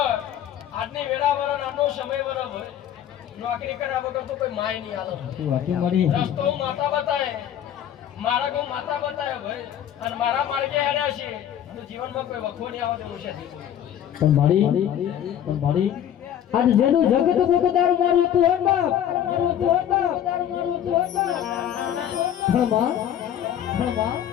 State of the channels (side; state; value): right; quieter; 10.3 dB